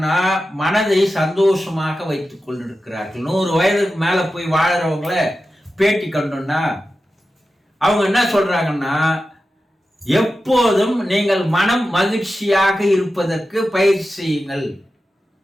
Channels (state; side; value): normal; both; correlation 0.92